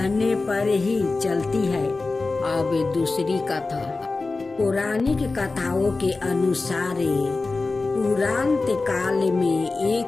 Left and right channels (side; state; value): right; quieter; 3.6 dB